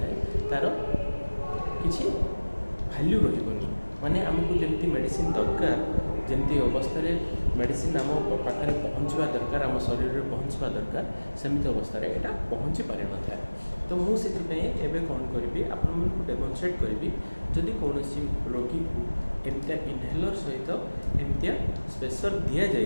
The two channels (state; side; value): inverted; both; correlation -1.00